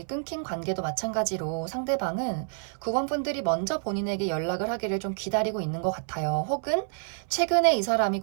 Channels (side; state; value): left; silent; 57 dB below the other